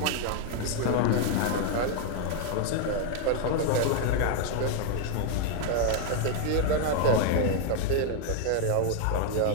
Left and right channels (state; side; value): different; both; correlation 0.00